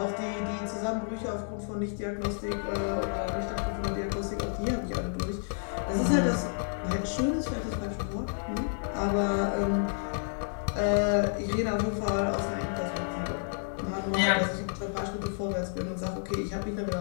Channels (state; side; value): silent; right; 55 dB below the other